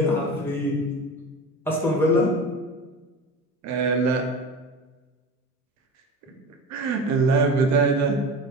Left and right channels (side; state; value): both; normal; correlation 0.31